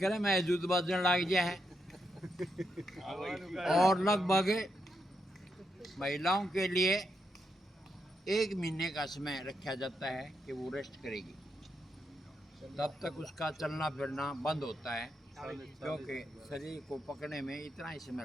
में जूत बजने लग गया है। और लगभग महिलाओं के लिए 1 महीने का समय रखा जाता है कि वो रेस्ट करेगी, तब तक उसका चलना फिरना बंद होता है, क्योंकि शरीर को पकड़ने में इतना ही समय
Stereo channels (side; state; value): both; normal; correlation 0.82